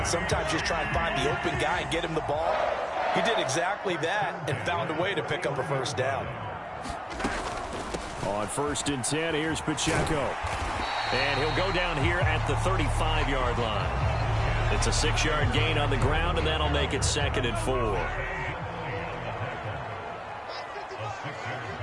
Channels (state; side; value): identical; both; correlation 1.00